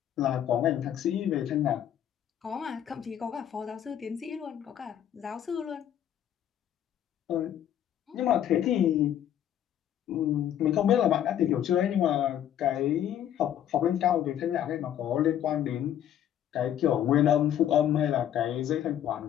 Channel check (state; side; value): quieter; right; 10.5 dB